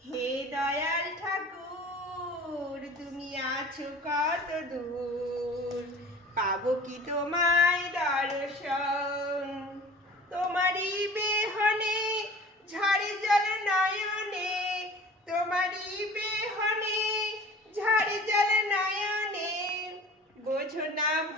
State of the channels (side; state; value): both; normal; correlation 0.43